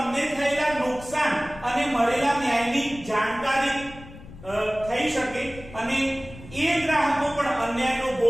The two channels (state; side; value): noise; left; rumble, 17 dB below the sound